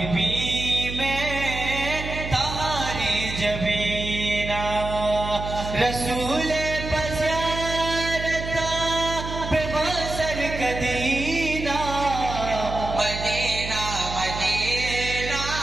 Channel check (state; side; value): noise; right; hum, 7 dB below the sound